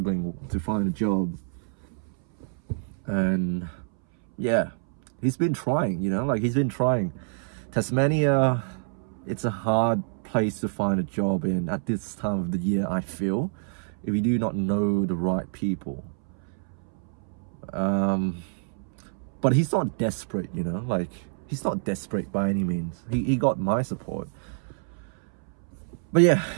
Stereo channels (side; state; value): left; silent; 60 dB below the other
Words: to find a job, and yeah, he's been trying, you know, like he's been trying. Tasmania, it's a hard place to find a job in at this time of the year, I feel, if you do not know the right people. But he's not desperate, you know, like he's not desperate by any means. He got my support. But yeah,